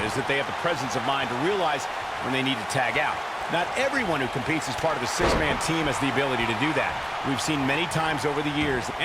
is that they have the presence of mind to realize when they need to tag out. Not everyone who competes as part of a six-man team has the ability to do that. We've seen many times over the years,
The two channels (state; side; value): identical; both; correlation 1.00